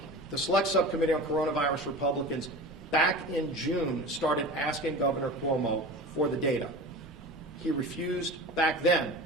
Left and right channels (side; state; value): both; normal; correlation 0.34